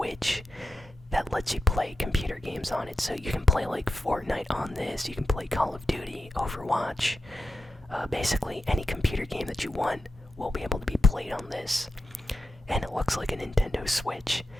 that lets you play computer games on it. So you can play like Fortnite on this, you can play Call of Duty, Overwatch. Basically any computer game that you want will be able to be played on this. And it looks like a Nintendo Switch,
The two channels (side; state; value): both; normal; correlation 0.89